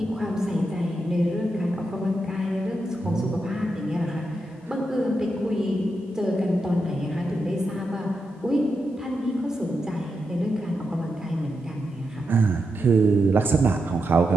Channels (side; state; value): both; normal; correlation 0.86